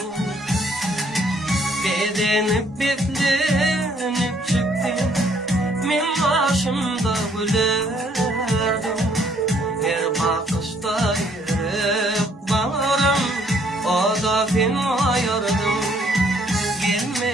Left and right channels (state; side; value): normal; both; correlation 0.65